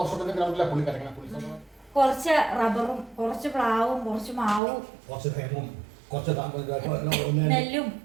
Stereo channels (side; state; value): left; drops out; at 4.6 s